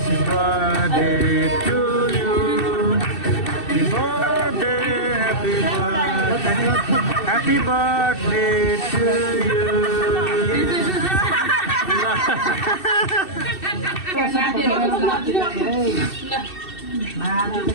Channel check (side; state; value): right; late; 2.6 ms